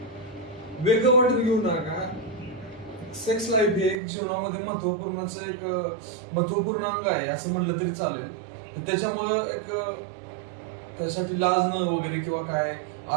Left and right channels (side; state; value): left; drops out; at 4.0 s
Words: वेगळं वाटून घेऊ नका. सेक्स लाईफ हे एक जीवनामध्ये महत्वपूर्ण अंग आहे असं म्हणलं तरी चालेल. त्याच्यामुळे त्यासाठी लाजणं वगैरे किंवा काय,